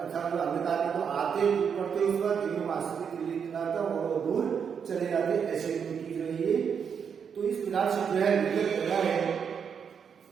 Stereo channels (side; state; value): left; quieter; 7.0 dB